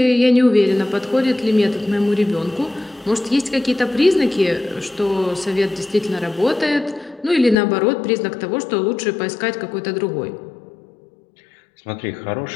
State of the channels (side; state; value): right; drops out; at 7.6 s